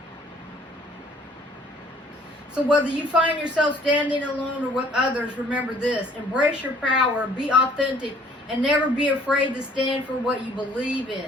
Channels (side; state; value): both; normal; correlation 0.57